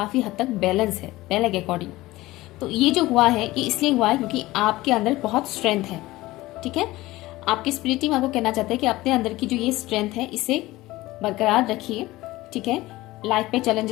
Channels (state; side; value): quieter; right; 18.3 dB